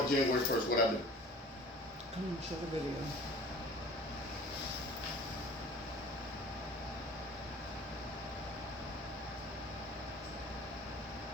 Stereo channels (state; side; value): normal; both; correlation 0.46